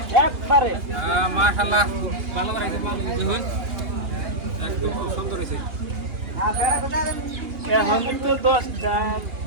একবারে মাশাআল্লাহ ভালো করেছে, ভালো দেখুন একদম খুব সুন্দর হয়েছে। এখন তো 10টা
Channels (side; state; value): left; late; 2.8 ms